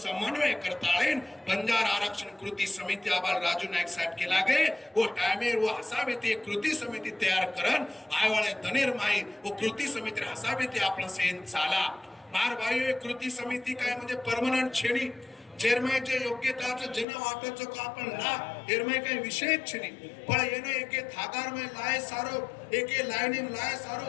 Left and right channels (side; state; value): right; drops out; at 17.1 s